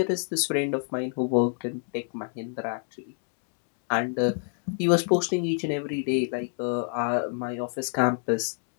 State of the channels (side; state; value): right; silent; 59 dB below the other